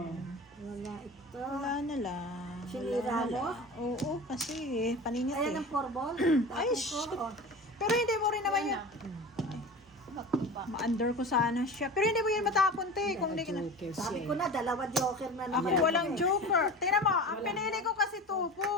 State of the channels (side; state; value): both; normal; correlation 0.33